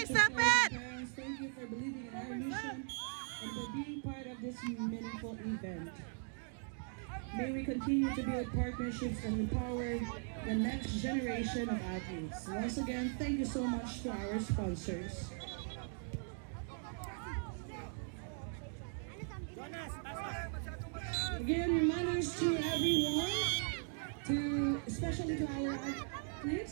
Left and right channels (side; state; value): left; silent; 52 dB below the other